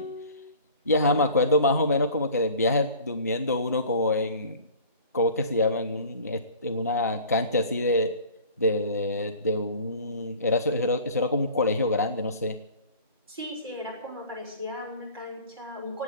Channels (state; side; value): inverted; both; correlation -0.45